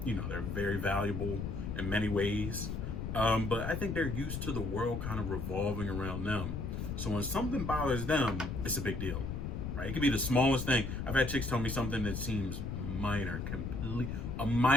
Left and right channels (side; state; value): left; noise; rumble, 4 dB below the sound